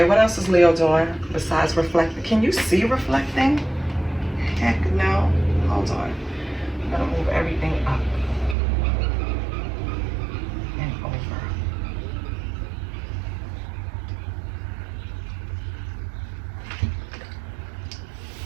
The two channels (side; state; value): left; drops out; at 8.6 s